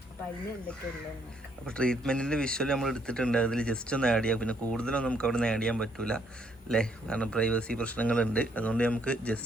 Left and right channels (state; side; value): normal; both; correlation 0.69